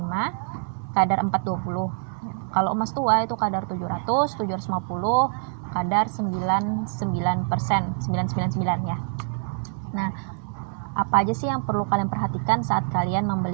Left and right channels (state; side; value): silent; left; 62 dB below the other